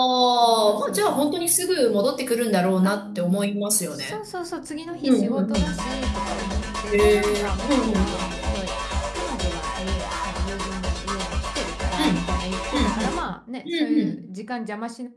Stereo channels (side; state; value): both; identical; correlation 1.00